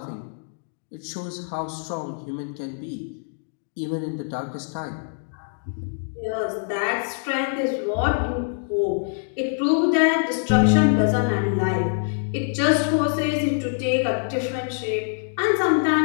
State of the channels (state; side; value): silent; right; digital silence